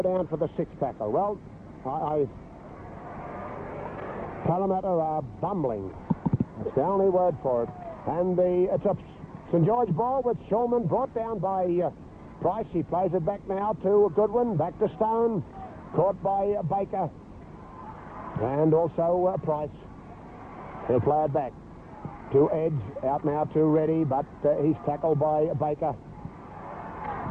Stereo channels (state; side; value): identical; both; correlation 1.00